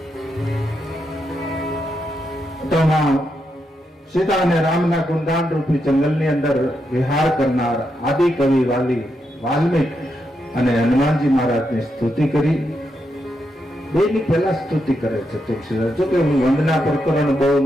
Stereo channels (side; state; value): both; normal; correlation 0.83